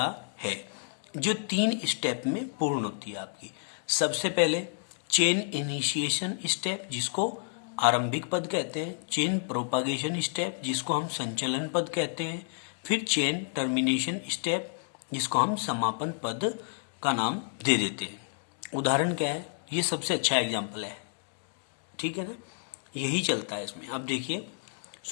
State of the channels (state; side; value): silent; right; 58 dB below the other